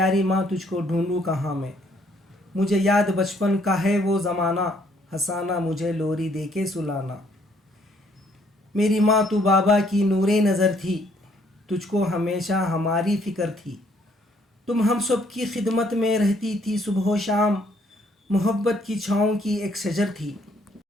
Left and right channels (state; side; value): normal; both; correlation 0.66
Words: ماں تجھ کو ڈھونڈوں کہاں میں۔ مجھے یاد بچپن کا ہے وہ زمانہ، ہنسانا مجھے لوری دے کے سلانا۔ میری ماں تو بابا کی نور نظر تھی، تجھ کو ہمیشہ ہماری فکر تھی۔ تم ہم سب کی خدمت میں رہتی تھی صبح و شام، محبت کی چھاؤں کی ایک شجر تھی۔